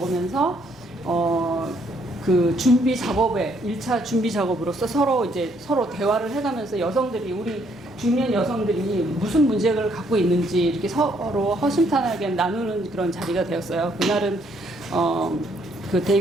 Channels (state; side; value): normal; both; correlation 0.69